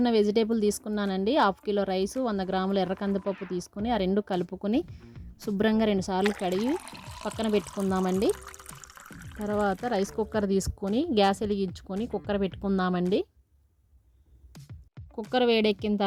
ఉన్న వెజిటేబుల్ తీసుకున్నానండి. 1/2 కిలో రైసు, 100 గ్రాముల ఎర్ర కందిపప్పు తీసుకుని ఆ రెండు కలుపుకొని శుభ్రంగా 2 సార్లు కడిగి పక్కన పెట్టుకుందామండి. తర్వాత రైస్ కుక్కర్ తీసుకొని గ్యాస్ వెలిగించుకొని కుక్కర్ పెట్టుకుందామండి. కుక్కర్ వేడెక్కిన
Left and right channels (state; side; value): identical; both; correlation 1.00